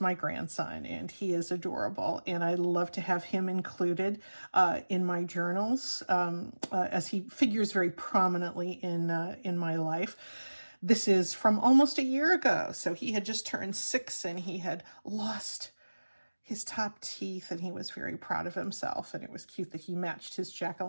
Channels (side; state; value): both; inverted; correlation -1.00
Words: grandson, and he is adorable, and I love to have him included in my journals, as he figures very prominently in my life. This is from almost a year ago, so he had just turned 6, and he had lost his top teeth, and he was very proud of himself, and it was cute that he matched his